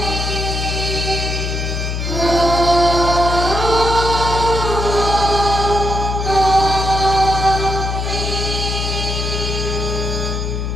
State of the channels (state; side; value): noise; left; hum, 2 dB below the sound